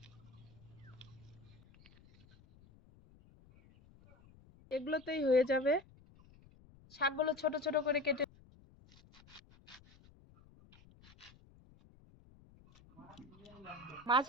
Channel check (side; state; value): left; noise; rumble, 25 dB below the sound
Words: এগুলোতেই হয়ে যাবে। শাকগুলো ছোট ছোট করে কেটে মাছ